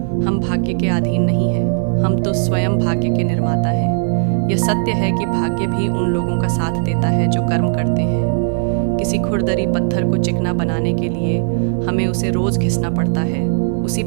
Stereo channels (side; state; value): left; silent; digital silence